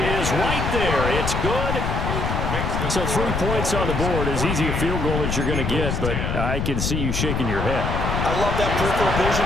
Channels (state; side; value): noise; left; rumble, 1 dB below the sound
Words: right there. It's good. So 3 points on the board, as easy a field goal as you're going to get, but I can see you shaking your head. I love that peripheral vision